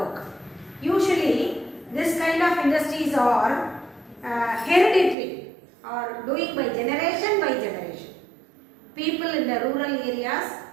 Usually this kind of industries are hereditary or doing by generation. People in the rural areas,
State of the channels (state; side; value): drops out; left; at 5.2 s